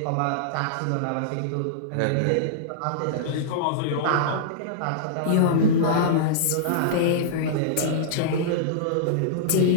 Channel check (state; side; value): different; both; correlation -0.03